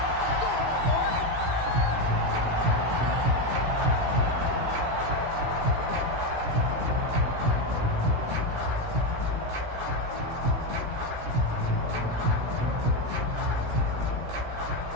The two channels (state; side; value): late; left; 17 ms